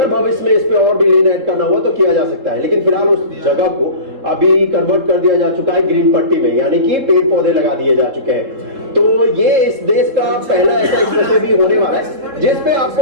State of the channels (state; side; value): late; left; 3.7 ms